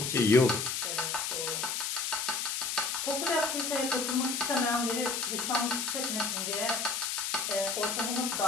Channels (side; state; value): left; noise; hiss, 1 dB below the sound